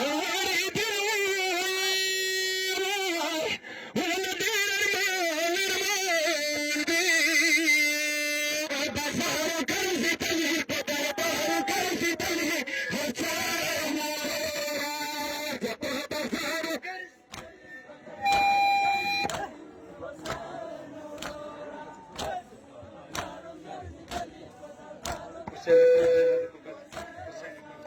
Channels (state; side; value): identical; both; correlation 1.00